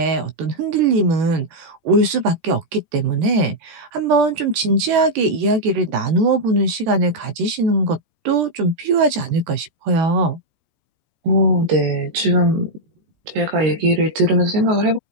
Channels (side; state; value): left; late; 13 ms